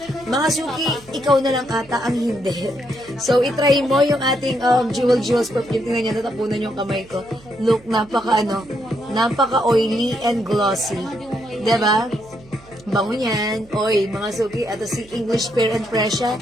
Mga suki, ikaw na lang ata ang hindi. So, itry mo yung ating Jewels perfume. Tingnan niyo, natapunan yung kamay ko. Look, napaka-oily and glossy. Diba? Bango niyan. Oy, mga suki, at si English Parent Presya.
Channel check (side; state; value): right; noise; hum, 25 dB below the sound